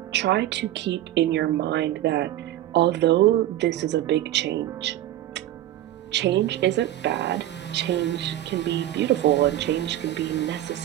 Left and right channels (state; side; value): quieter; left; 13.4 dB